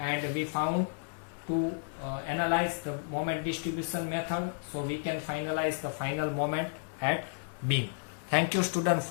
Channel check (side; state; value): right; silent; 56 dB below the other